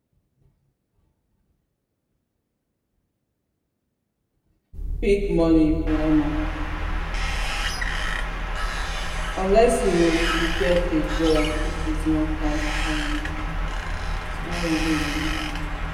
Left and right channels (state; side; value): identical; both; correlation 1.00